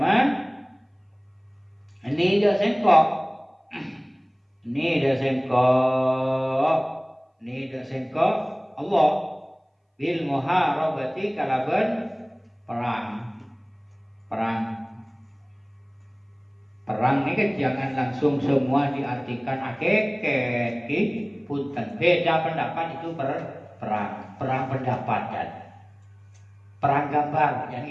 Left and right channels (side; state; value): both; identical; correlation 1.00